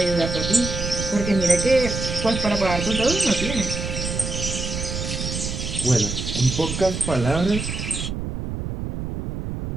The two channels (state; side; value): noise; right; rumble, 5 dB below the sound